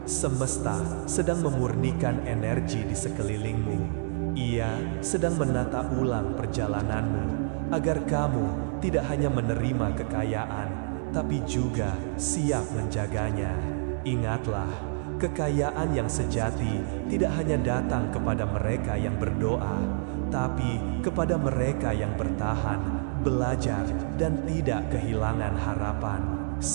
Semesta sedang memurnikan energi di sekelilingmu. Ia sedang menata ulang perjalananmu, agar kamu tidak hanya menerima kekayaan, tapi juga siap menjaganya. Ingatlah, kekayaan yang sejati tidak hanya datang kepada mereka yang berdoa, tapi kepada mereka yang bertahan, belajar, dan tidak kehilangan harapan.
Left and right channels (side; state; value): left; silent; digital silence